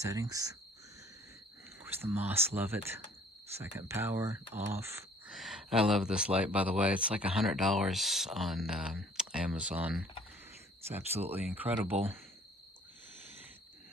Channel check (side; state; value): both; normal; correlation 0.55